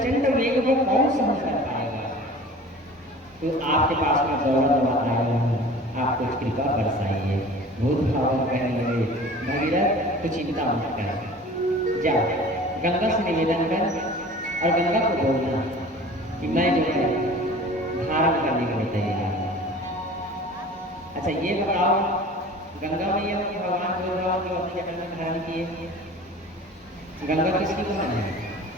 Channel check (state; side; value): normal; both; correlation 0.42